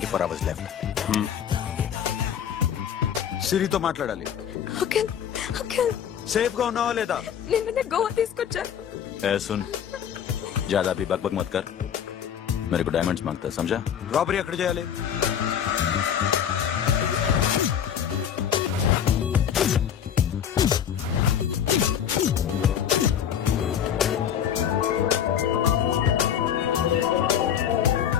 hours left. సిరితో మాట్లాడాలి. అంకిల్ అంకిల్ సేఫ్ గా ఉన్నావా లేదా? నిన్న గోవా తీసుకొచ్చారు. ए सुन, ज्यादा भी बकबक मत कर. मेरे को डायमंड्स मांगता है, समझा? రాబరీ ఎక్కడ చేయాలి?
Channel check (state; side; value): quieter; right; 8.9 dB